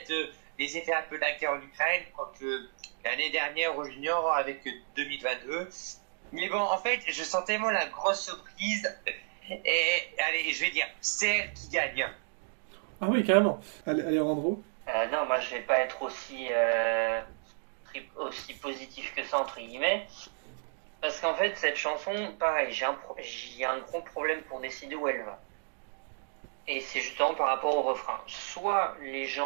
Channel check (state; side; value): silent; left; 56 dB below the other